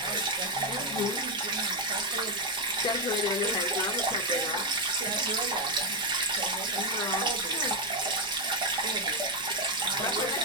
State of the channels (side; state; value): both; normal; correlation 0.05